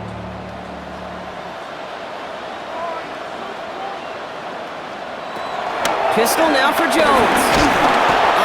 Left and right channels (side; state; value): both; identical; correlation 1.00